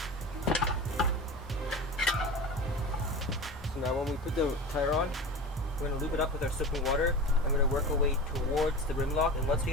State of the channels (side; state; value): both; normal; correlation 0.31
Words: Now when we put the tire on, we're going to lube it up with our soaping water. I'm going to work our way towards the rim lock, and once we